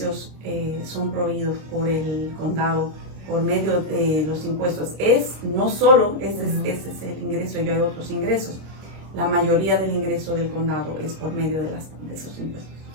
son proveídos por el condado por medio de los impuestos. No solo ese es el ingreso, y hay otros ingresos. La mayoría del ingreso del condado es por medio de esos impuestos.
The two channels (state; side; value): late; left; 26 ms